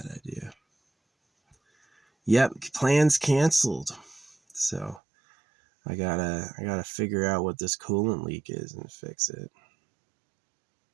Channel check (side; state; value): left; drops out; at 5.0 s